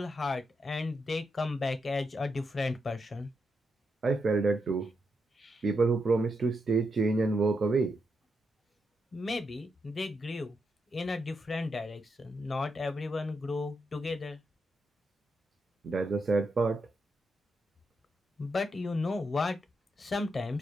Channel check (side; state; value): both; normal; correlation 0.83